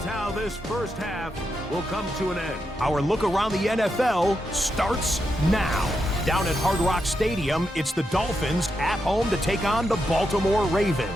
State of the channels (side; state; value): both; normal; correlation 0.85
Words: how this first half will come to an end. Our look around the NFL starts now. Down at Hard Rock Stadium, it's the Dolphins at home to take on the Baltimore